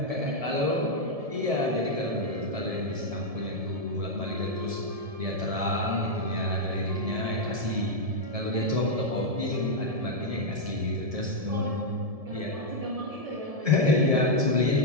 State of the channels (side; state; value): left; late; 1.7 ms